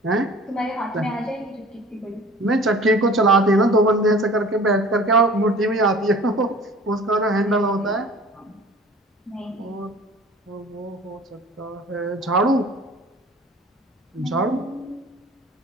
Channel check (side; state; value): both; normal; correlation 0.45